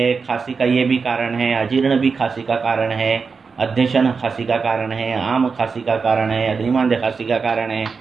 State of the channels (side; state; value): left; quieter; 5.1 dB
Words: खांसी का ये भी कारण है, अजीर्ण भी खांसी का कारण है, अध्यशन खांसी का कारण है, आम खांसी का कारण है, अग्निमांद्य खांसी का कारण है,